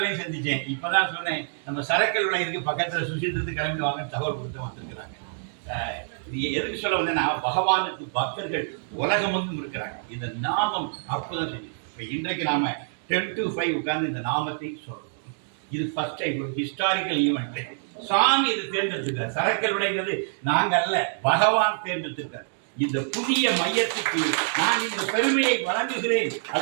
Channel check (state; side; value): silent; left; digital silence